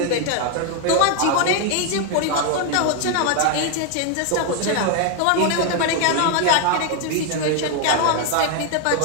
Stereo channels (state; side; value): different; both; correlation 0.01